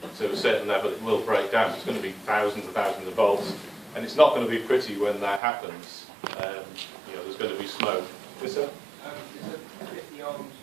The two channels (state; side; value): drops out; left; at 5.4 s